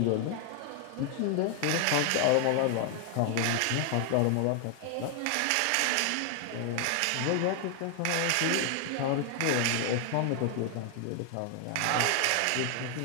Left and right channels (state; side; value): different; both; correlation 0.00